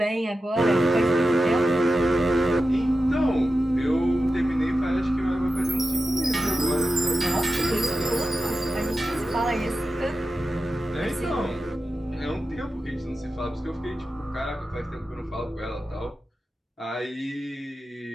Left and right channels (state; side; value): normal; both; correlation 0.92